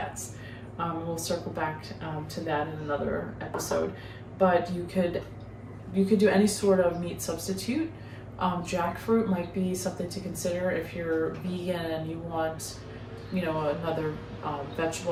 We'll circle back to that in another episode. But you could do any sort of meat substitute. Jackfruit might be something to consider if you're vegan and you want, another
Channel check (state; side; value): identical; both; correlation 1.00